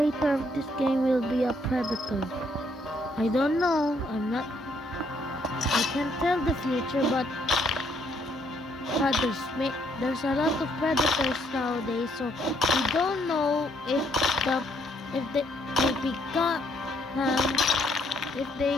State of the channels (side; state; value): both; normal; correlation 0.70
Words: of this game will be a predator? I don't know. I can't tell the future, but there's a lot of predators nowadays, so we don't know if they